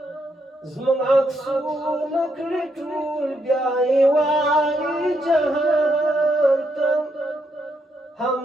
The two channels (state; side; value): normal; both; correlation 0.78